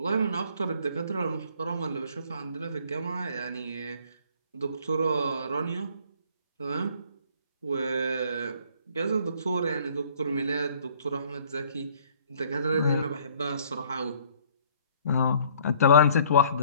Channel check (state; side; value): inverted; both; correlation -0.57